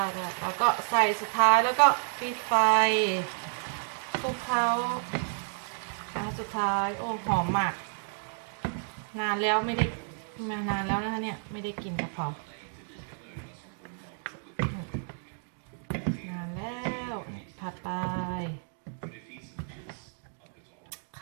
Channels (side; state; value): left; silent; 57 dB below the other